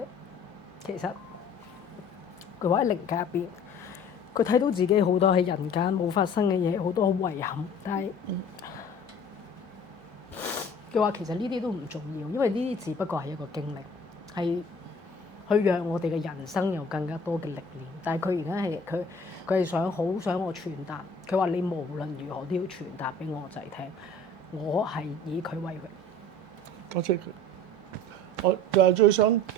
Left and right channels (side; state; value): both; normal; correlation 0.47